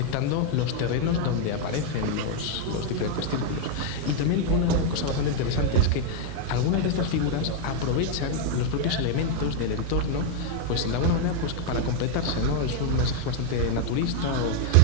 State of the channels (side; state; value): both; different; correlation 0.00